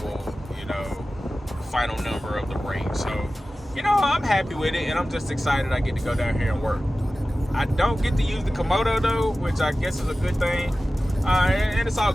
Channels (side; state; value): both; normal; correlation 0.95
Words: you know, final number of the rate. So, you know, I'm happy with it, and I'm just excited I get to go down here and work. I don't get to use the Komodo though, which I guess is a good thing, and it's all